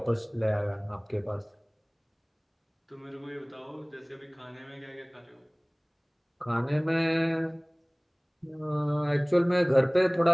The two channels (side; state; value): both; identical; correlation 1.00